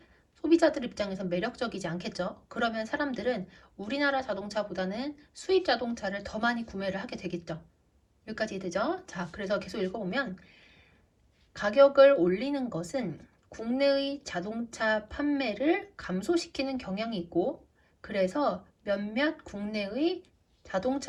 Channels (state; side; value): identical; both; correlation 1.00